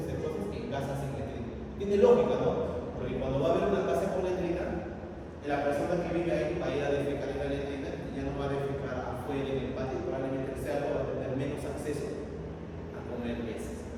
cosas que en casas sin letrina. Tiene lógica, ¿no? Porque cuando va a haber una casa con letrina, la persona que vive ahí va a ir a defecar en la letrina y ya no va a defecar afuera en el patio, probablemente el cerdo va a tener menos acceso a comer peces.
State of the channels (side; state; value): both; identical; correlation 1.00